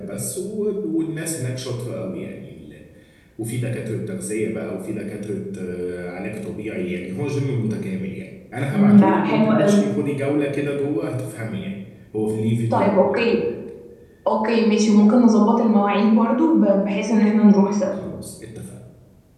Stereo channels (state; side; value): identical; both; correlation 1.00